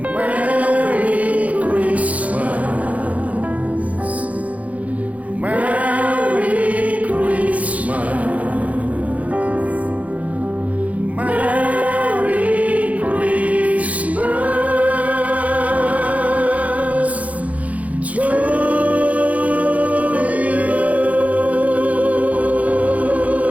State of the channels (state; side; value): late; left; 0.069 ms